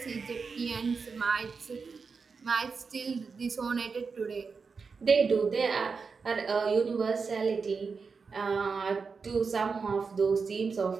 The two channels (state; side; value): quieter; left; 5.1 dB